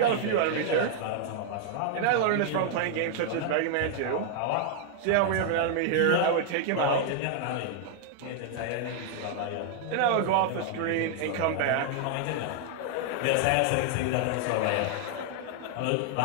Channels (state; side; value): different; both; correlation 0.00